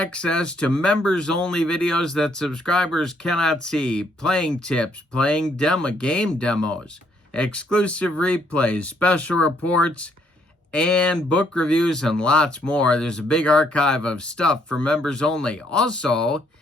to members-only videos that subscribers cannot see, playing tips, playing game demos, exclusive replays, special reports, and book reviews, and lots more. There's a big archive of stuff for members only. Also,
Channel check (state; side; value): normal; both; correlation 0.70